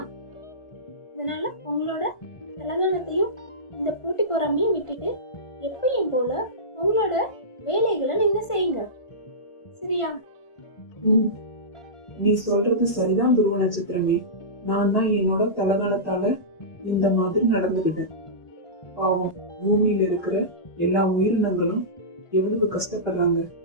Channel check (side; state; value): right; late; 1.5 ms